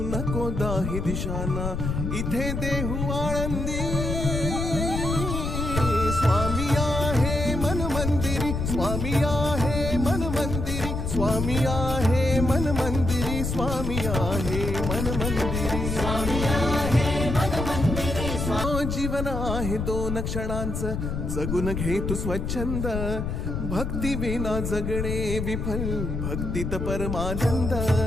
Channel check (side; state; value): left; noise; rumble, 3 dB below the sound